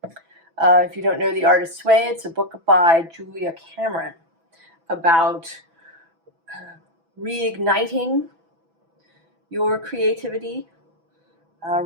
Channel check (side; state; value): left; late; 6.0 ms